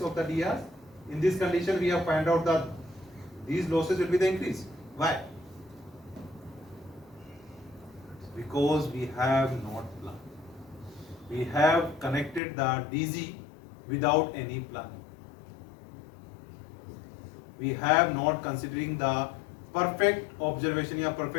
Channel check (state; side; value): drops out; right; at 12.4 s